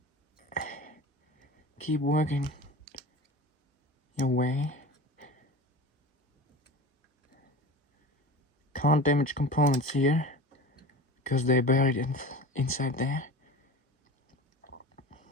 keep working your way. Can't damage components here because they're buried inside there.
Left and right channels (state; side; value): normal; both; correlation 0.33